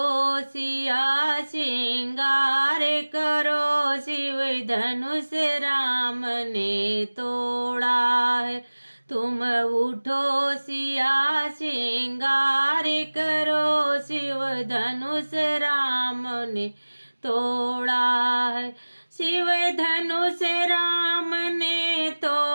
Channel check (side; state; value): both; inverted; correlation -1.00